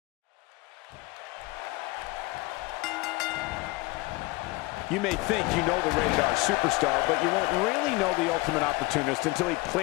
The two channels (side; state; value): right; quieter; 22.4 dB